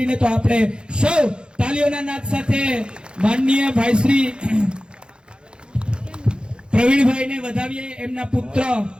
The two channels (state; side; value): late; left; 0.051 ms